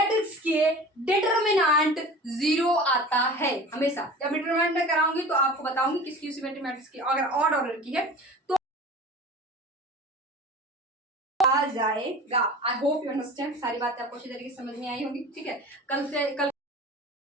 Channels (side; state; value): both; normal; correlation 0.38